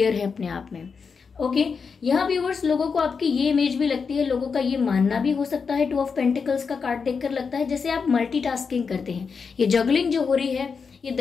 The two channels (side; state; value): right; quieter; 5.5 dB